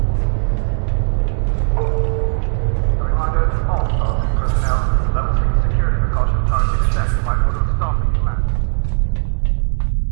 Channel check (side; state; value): left; silent; 59 dB below the other